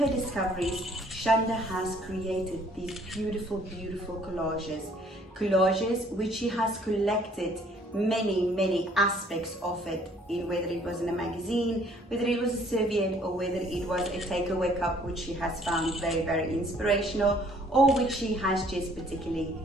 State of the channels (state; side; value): normal; both; correlation 0.59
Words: discoveries, Chanda has created these beautiful, beautiful collages. Collages which she has collected many aspects of it, in whether it was in a magazine, whether it was a serviette, or whether it was a takeaway cup which she has found very, very inspirational, or which she has just particularly